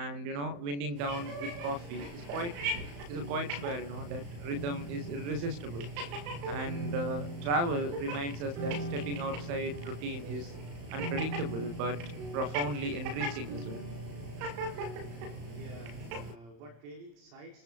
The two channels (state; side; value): late; left; 35 ms